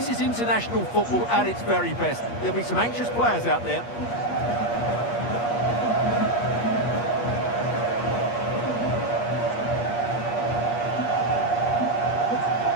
is international football at its very best. There'll be some anxious players out there.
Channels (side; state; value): right; late; 8.5 ms